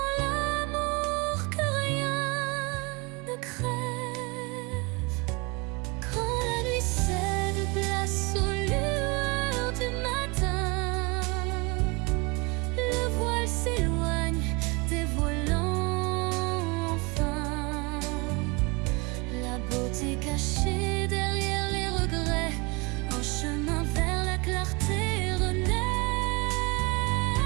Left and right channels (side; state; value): left; quieter; 27.7 dB